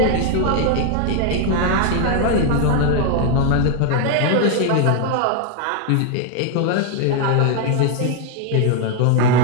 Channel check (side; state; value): both; different; correlation 0.01